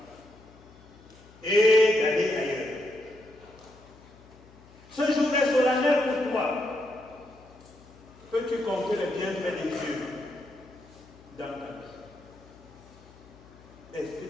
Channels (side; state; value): left; noise; hum, 23 dB below the sound